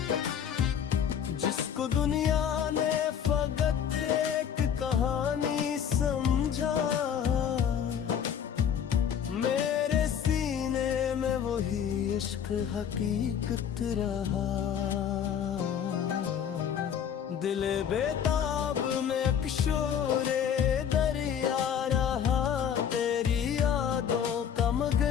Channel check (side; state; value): right; quieter; 8.4 dB